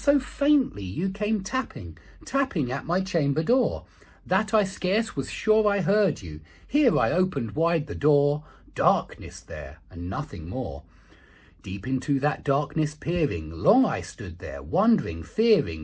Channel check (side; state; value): both; identical; correlation 1.00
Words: faintly you came tapping at my chamber door, that I scarce was sure I heard you. Here I opened wide the door, darkness there, and nothing more. Deep into that darkness peering, long I stood there, wondering,